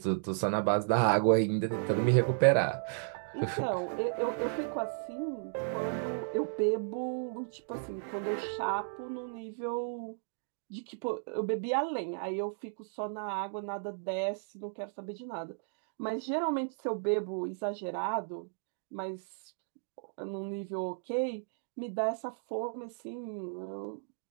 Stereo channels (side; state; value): left; silent; digital silence